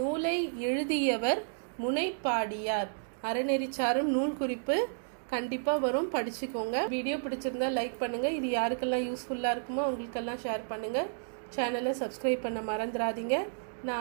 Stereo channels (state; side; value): silent; left; digital silence